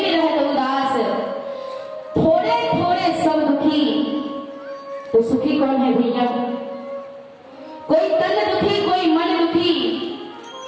नहीं रहता उदास, थोड़े थोड़े सब दुखी, तो सुखी कौन है भैया? कोई तन दुखी, कोई मन दुखी,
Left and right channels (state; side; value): identical; both; correlation 1.00